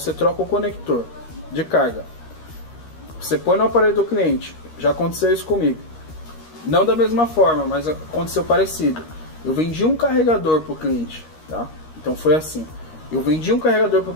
troca o conector de carga, você põe no aparelho do cliente. Já aconteceu isso comigo. Não da mesma forma, mas aconteceu parecido. Eu vendi um carregador para o cliente, tá? Então foi assim. Eu vendi um carregador para o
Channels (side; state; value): right; late; 13 ms